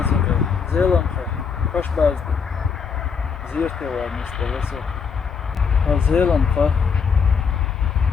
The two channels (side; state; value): right; quieter; 6.0 dB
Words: zelam kay, kaş bazdı. Zirte var mestelesi. Ha zelam kay.